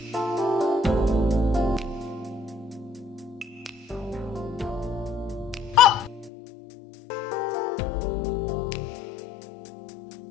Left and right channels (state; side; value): drops out; right; at 6.3 s